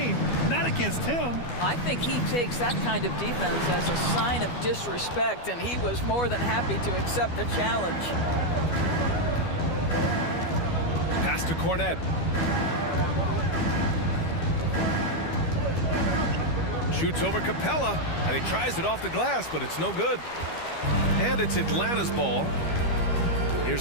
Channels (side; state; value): right; late; 12 ms